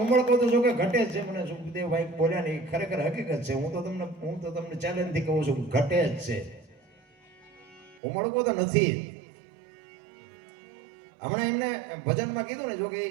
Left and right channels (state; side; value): drops out; left; at 8.0 s